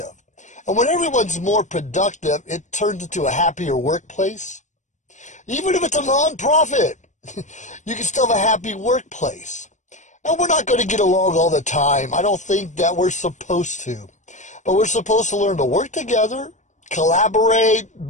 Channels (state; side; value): late; right; 0.35 ms